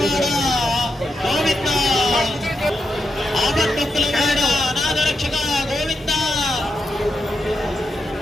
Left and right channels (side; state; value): both; normal; correlation 0.86